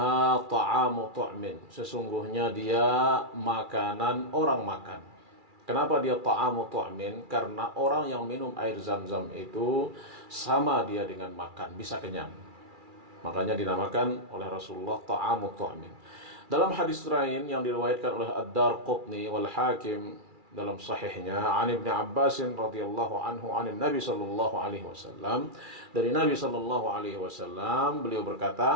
ta'amu tu'min. Sesungguhnya dia makanan orang makan. Kenapa dia ta'amu tu'min? Karena orang yang minum air Zam-Zam itu sama dia dengan makan, bisa kenyang. Makanya dinamakan oleh Rasulullah ta'amu tu'min. Dalam hadis lain yang diriwayatkan oleh Ad-Darqutni wal Hakim dalam sahihnya, an Ibnu Abbas radhiyallahu anhu an Nabi sallallahu alaihi wasallam, dari Nabi sallallahu alaihi wasallam beliau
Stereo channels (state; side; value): late; left; 2.4 ms